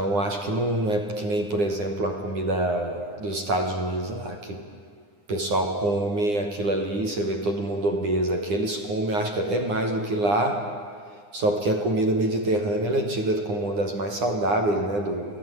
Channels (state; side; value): late; left; 9.8 ms